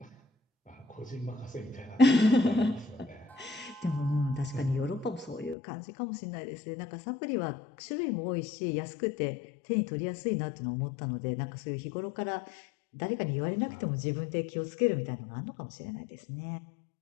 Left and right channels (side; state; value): right; drops out; at 5.6 s